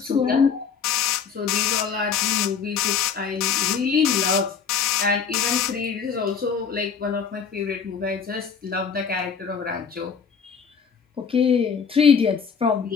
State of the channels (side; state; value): right; quieter; 6.5 dB